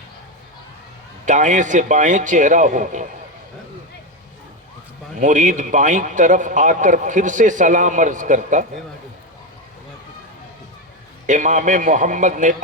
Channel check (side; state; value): both; normal; correlation 0.12